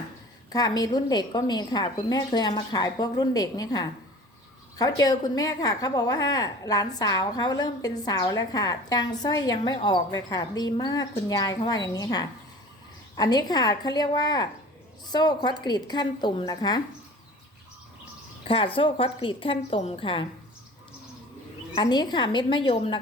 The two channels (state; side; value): normal; both; correlation 0.42